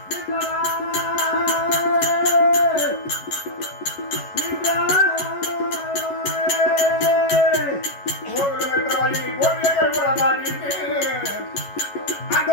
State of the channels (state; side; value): late; right; 11 ms